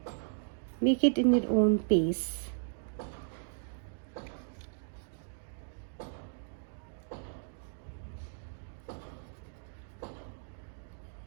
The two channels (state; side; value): silent; left; digital silence